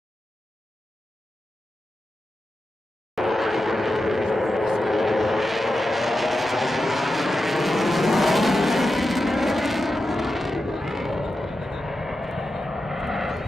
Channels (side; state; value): both; normal; correlation 0.90